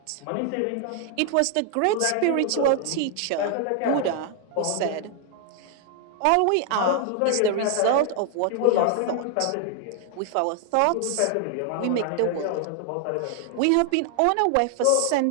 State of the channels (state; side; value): different; both; correlation 0.00